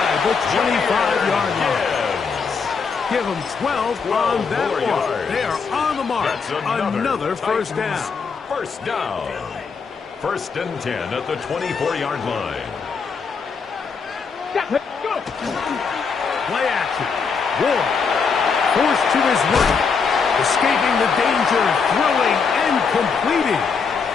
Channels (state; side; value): quieter; right; 5.4 dB